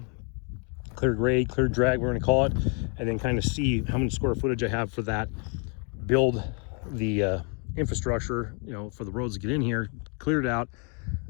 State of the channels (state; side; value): quieter; right; 37.8 dB